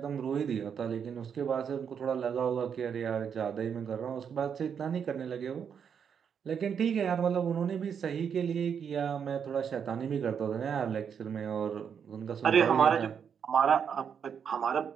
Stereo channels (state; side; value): quieter; left; 7.4 dB